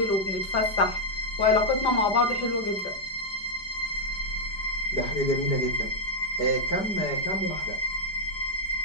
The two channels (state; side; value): late; right; 5.0 ms